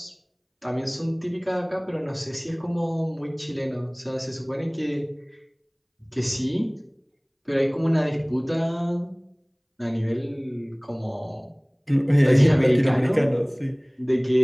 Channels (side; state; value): both; identical; correlation 1.00